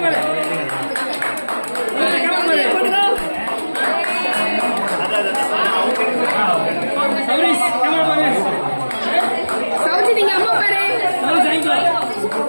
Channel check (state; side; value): inverted; both; correlation -1.00